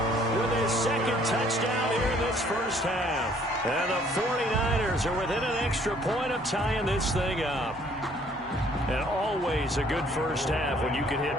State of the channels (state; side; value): normal; both; correlation 0.60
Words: with his 2nd touchdown here in this first half. And the 49ers are within an extra point of tying this thing up. And always a good first half when you can